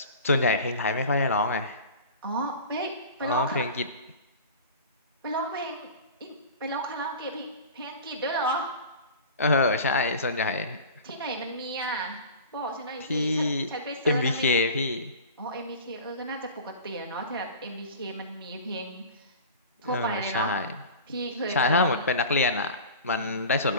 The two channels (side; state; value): both; inverted; correlation -0.37